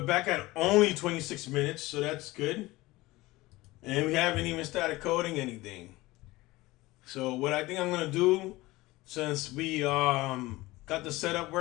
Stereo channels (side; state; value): right; quieter; 19.6 dB